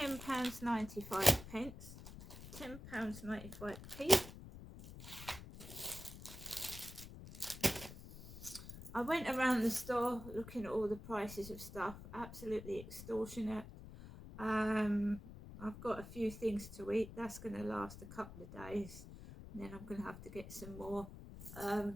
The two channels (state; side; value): noise; left; rumble, 13 dB below the sound